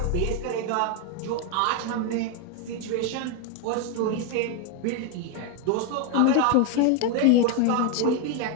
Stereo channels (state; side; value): different; both; correlation 0.01